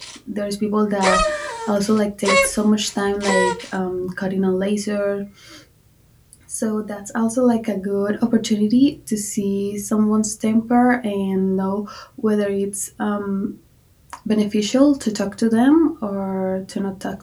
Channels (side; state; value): both; identical; correlation 1.00